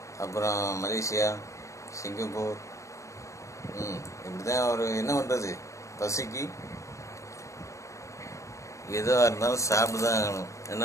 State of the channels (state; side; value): late; right; 0.15 ms